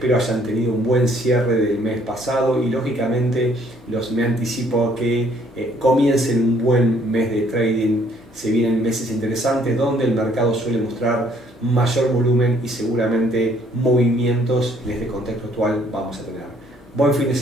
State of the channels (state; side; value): normal; both; correlation 0.63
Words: hayan tenido un buen cierre del mes pasado y lógicamente me anticipo a que comiencen un buen mes de trading. Se vienen meses interesantes donde el mercado suele mostrar mayor volumen y seguramente movimientos en este contexto actual vamos a tener. Buen fin de